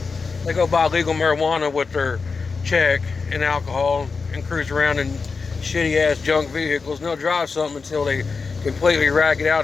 they go buy legal marijuana with their check and alcohol and cruise around in shitty ass junk vehicles, and they'll drive something until they completely rack it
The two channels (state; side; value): quieter; right; 4.7 dB